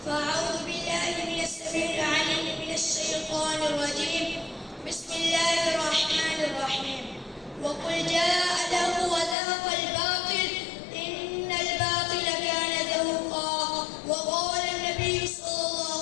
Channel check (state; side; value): drops out; right; at 9.3 s